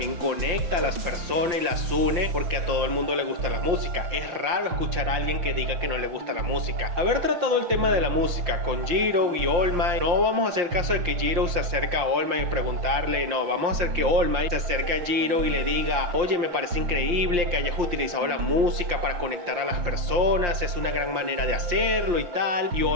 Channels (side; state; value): left; late; 5.7 ms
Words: conecta a las personas y las une, porque a todo el mundo le gusta la música. Es raro escuchar a alguien que diga que no le gusta la música. Haber tratado el tema de la música con Jiro y All Might, no vamos a hacer caso de que Jiro se acerca a All Might y preguntarle, no, vamos a hacer que All Might se acerque a Jiro Jiro y le diga: oye, me parece increíble que hayas utilizado la música para conectar a las personas, es una gran manera de hacerlo y tal. Y